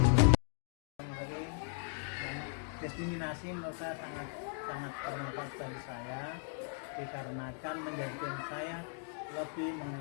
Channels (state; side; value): silent; right; 53 dB below the other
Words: Diskriminasi menurut saya sangat bermanfaat bagi saya dikarenakan menjadikan saya lebih